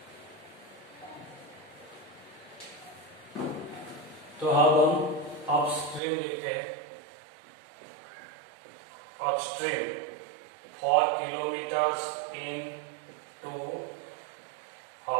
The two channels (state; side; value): drops out; left; at 6.0 s